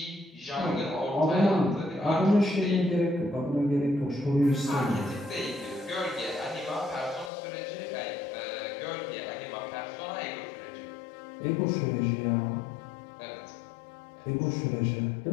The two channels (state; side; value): drops out; right; at 7.3 s